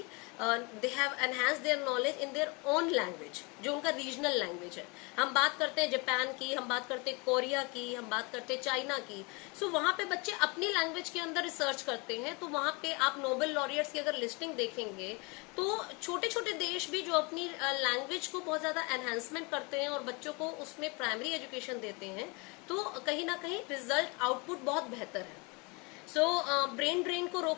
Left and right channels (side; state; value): right; quieter; 29.2 dB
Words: they have enhance their knowledge in their own language जो उनका रीजनल लैंग्वेज है. हम बात करते हैं जापान की, हम बात करते हैं कोरिया की, हम बात करते हैं चाइना की. सो वहां पे बच्चे अपनी लैंग्वेज के अंदर रिसर्च करते हैं. तो वहां पे आप नोबेल लॉरिएट्स की अगर लिस्टिंग देखेंगे तो छोटे छोटे देश भी जो अपनी लैंग्वेज को बहुत ज्यादा एनहांसमेंट करते हैं और बच्चों को उसमें प्राइमरी एजुकेशन देते हैं, तो कहीं ना कहीं रिजल्ट आउटपुट बहुत बेहतर है. सो ब्रेन ड्रेन को